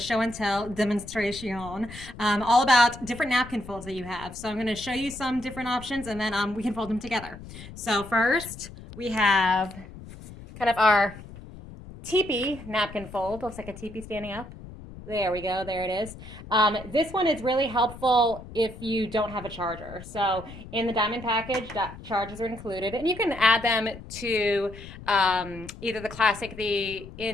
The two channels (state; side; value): noise; left; rumble, 15 dB below the sound